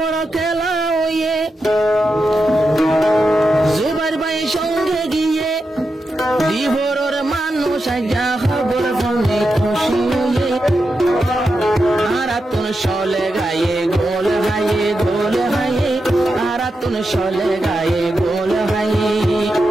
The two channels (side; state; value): both; normal; correlation 0.88